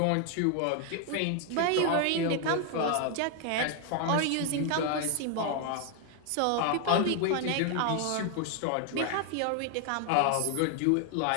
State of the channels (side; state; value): both; different; correlation 0.00